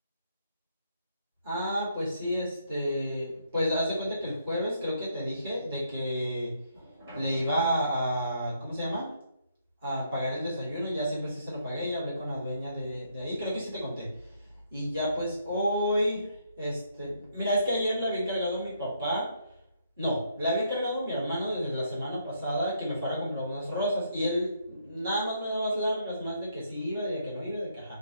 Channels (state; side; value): inverted; both; correlation -0.73